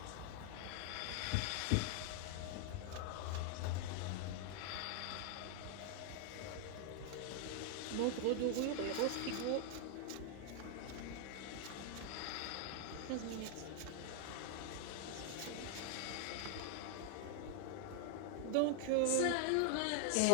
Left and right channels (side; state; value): both; different; correlation 0.00